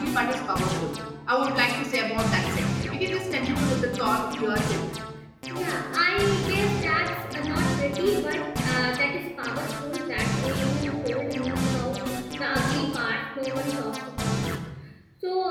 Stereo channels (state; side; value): identical; both; correlation 1.00